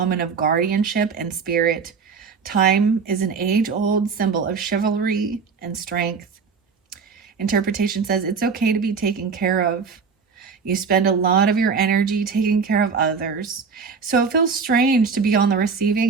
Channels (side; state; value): left; quieter; 5.5 dB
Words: of guardianship and spirit. Time is an age-old symbol of chivalry and strength. Interpretation says it's okay to be taken care of. You spend a lot of your energy taking care of others, so it feels strange to be on the